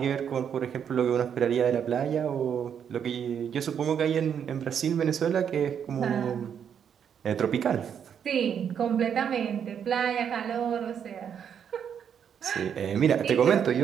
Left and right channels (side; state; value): left; quieter; 8.1 dB